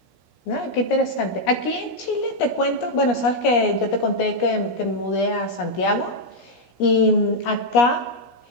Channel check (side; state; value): right; late; 17 ms